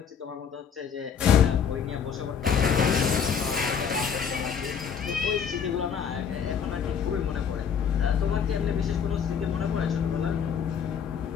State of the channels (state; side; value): quieter; right; 7.3 dB